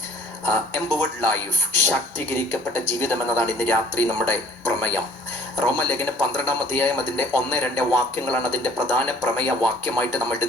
എംപവേർഡ് ലൈഫ്, ശാക്തീകരിക്കപ്പെട്ട ജീവിതം എന്നതാണ് ഇന്ന് രാത്രി നമ്മുടെ പ്രമേയം. റോമലേഖനം 12-ാം അധ്യായം അതിൻ്റെ 1-2 വാക്യങ്ങളാണ് അതിൻ്റെ പ്രധാന പ്രമേയ വാക്യമായിട്ട് നമ്മൾ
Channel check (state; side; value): normal; both; correlation 0.54